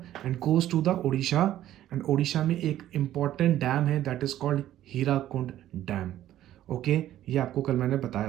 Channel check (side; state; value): left; quieter; 12.8 dB